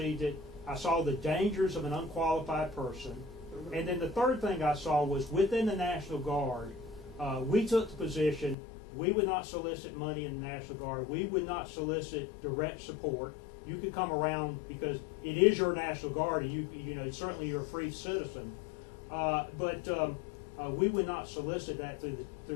it. I saw the dangers of an unqualified person. And then the third thing I saw was within the National Guard, we took the position we would not solicit money in the National Guard. We would not solicit direct support. You could come around because it is your National Guard, and you know certainly you're a free citizen. But we would not solicit that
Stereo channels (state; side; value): drops out; right; at 8.6 s